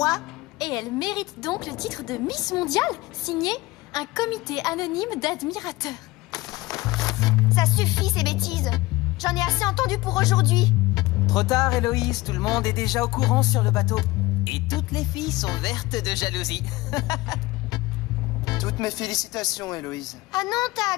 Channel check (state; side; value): quieter; right; 20.0 dB